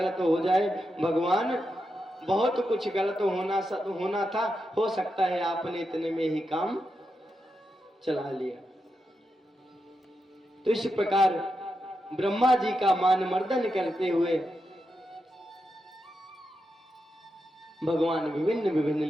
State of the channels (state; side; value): normal; both; correlation 0.86